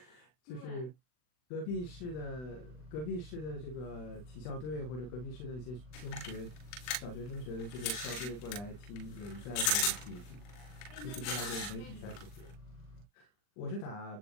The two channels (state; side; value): late; right; 40 ms